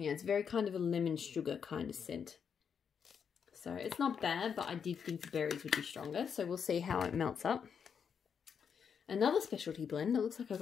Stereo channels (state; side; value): quieter; right; 7.0 dB